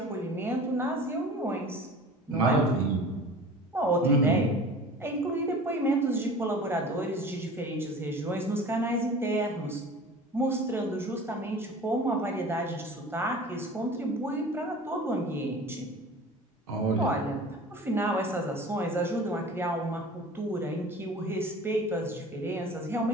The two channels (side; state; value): both; normal; correlation 0.41